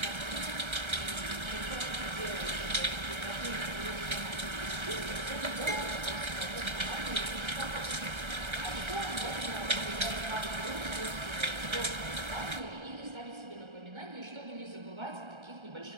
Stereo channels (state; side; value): late; left; 1.3 ms